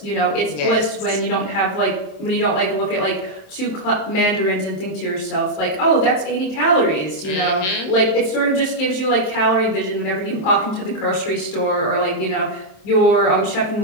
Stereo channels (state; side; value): late; right; 27 ms